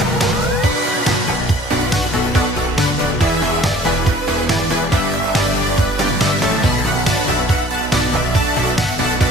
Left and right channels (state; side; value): normal; both; correlation 0.51